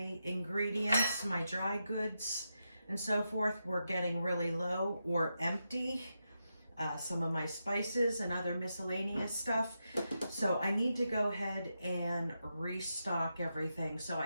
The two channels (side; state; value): both; inverted; correlation -0.86